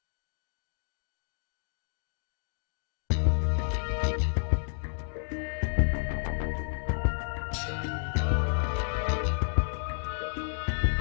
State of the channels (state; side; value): silent; right; digital silence